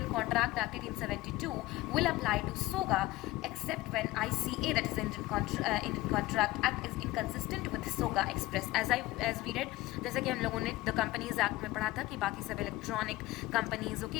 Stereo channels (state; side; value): quieter; right; 18.0 dB